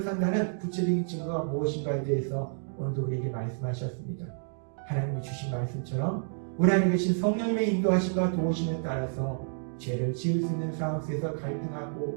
산다는 구체적인 증거가 무엇인가에 대해서 오늘도 우리에게 말씀하셨습니다. 하나님이 주신 말씀처럼 우리 안에 계신 성령님의 인도하심과 도우심에 따라서 죄를 지을 수 있는 상황 속에서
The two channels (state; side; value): silent; left; digital silence